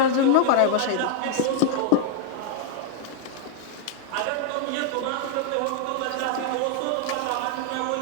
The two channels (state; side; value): different; both; correlation 0.00